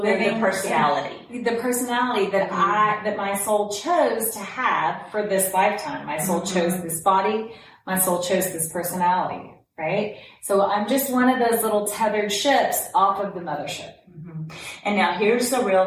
they're the personality. The personality that that my soul chose to have for this lifetime. My soul chose this body. My soul chose this personality, right? So I'm just one of those little tethered ships off of the mothership. And now here's the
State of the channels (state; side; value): identical; both; correlation 1.00